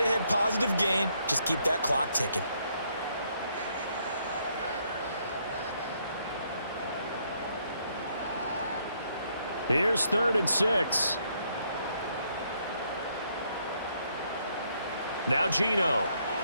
positive gain. Just keep that clock ticking. Here's 3rd and 6. Now Geno.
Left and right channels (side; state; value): both; inverted; correlation -0.72